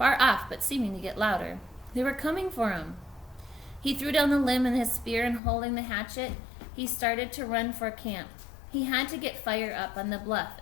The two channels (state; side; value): drops out; right; at 5.4 s